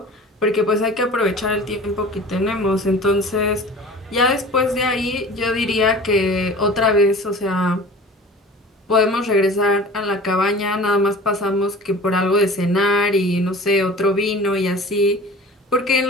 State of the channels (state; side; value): normal; both; correlation 0.40